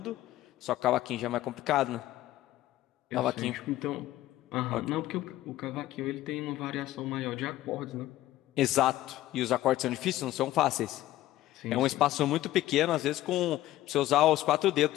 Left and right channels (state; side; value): quieter; right; 15.0 dB